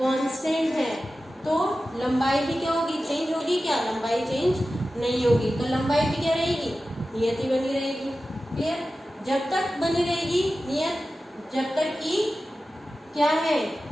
है तो लंबाई भी क्या होगी चेंज होगी, क्या लंबाई चेंज नहीं होगी, तो लंबाई भी क्या रहेगी नियत ही बनी रहेगी। क्लियर, जब तक बनी रहेगी नियत, जब तक कि क्या है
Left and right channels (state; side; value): normal; both; correlation 0.94